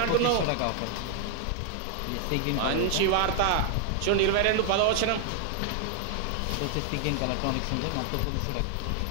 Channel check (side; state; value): both; different; correlation 0.00